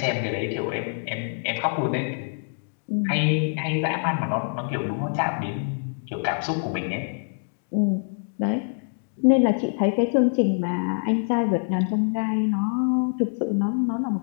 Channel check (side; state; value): right; silent; digital silence